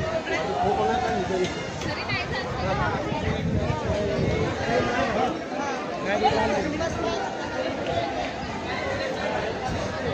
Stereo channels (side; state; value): both; identical; correlation 1.00